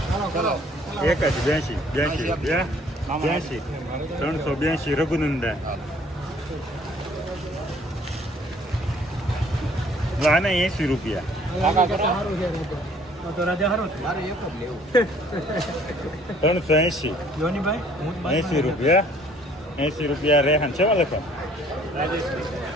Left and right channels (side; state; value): both; normal; correlation 0.58